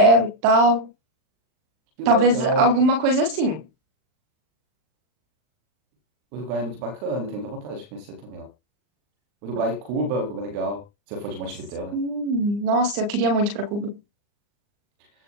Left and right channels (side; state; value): left; late; 39 ms